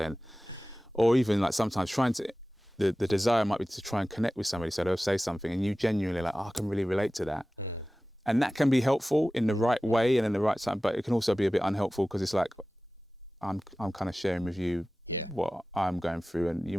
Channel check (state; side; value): normal; both; correlation 0.96